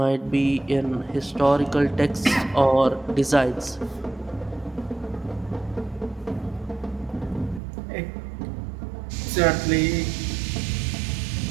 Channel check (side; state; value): left; drops out; at 7.6 s